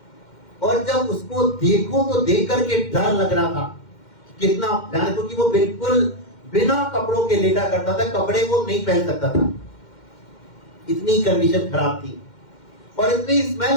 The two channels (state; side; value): late; right; 2.1 ms